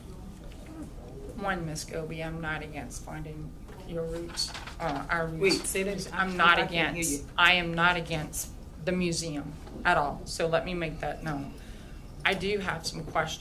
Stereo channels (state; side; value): identical; both; correlation 1.00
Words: One, Ms. Scobie, I'm not against finding your roots, our roots. Wait, say that. I'm not I can't hear against, you. I am not against the museum at all, so let me make that known. I do have some